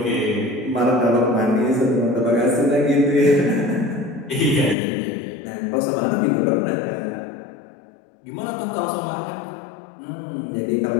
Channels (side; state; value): right; drops out; at 4.8 s